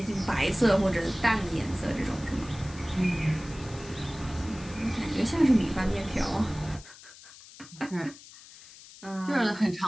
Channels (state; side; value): noise; left; hiss, 19 dB below the sound